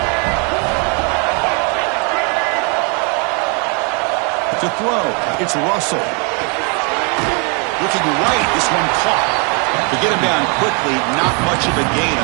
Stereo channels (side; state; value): left; quieter; 35.7 dB